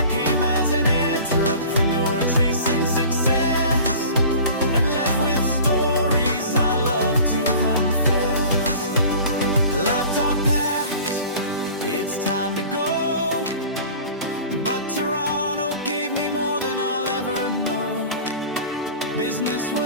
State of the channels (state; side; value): inverted; both; correlation -0.42